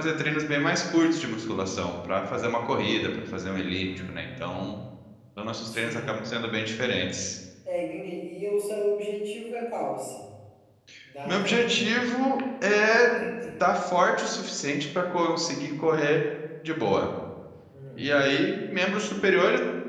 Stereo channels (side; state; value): both; identical; correlation 1.00